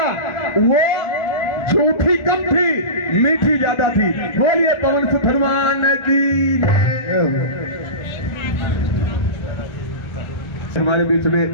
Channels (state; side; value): late; right; 1.4 ms